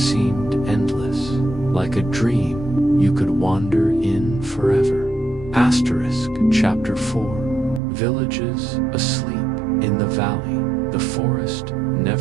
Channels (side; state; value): left; drops out; at 7.8 s